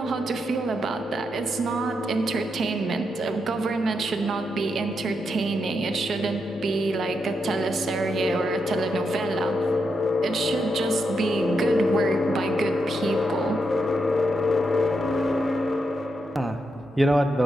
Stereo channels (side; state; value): both; normal; correlation 0.83